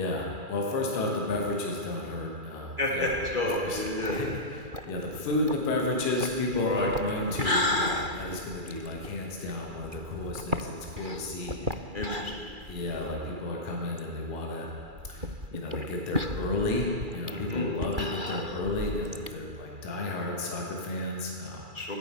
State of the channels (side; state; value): left; late; 2.3 ms